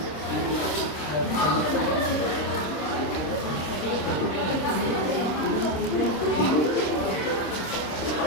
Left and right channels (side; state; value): right; late; 27 ms